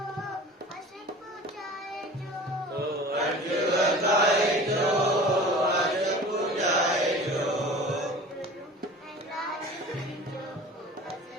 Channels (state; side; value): normal; both; correlation 0.40